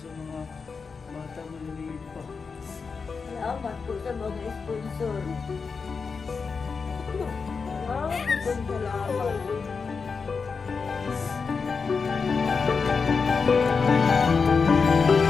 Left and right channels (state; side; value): quieter; right; 5.1 dB